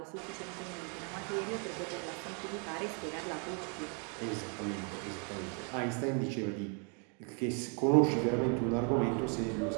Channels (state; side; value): quieter; left; 38.3 dB